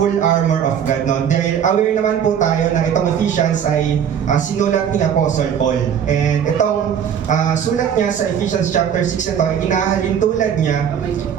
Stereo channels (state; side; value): quieter; left; 8.5 dB